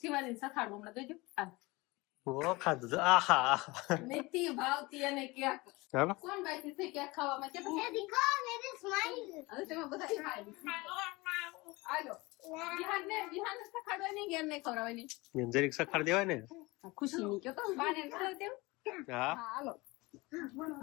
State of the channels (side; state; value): right; quieter; 23.1 dB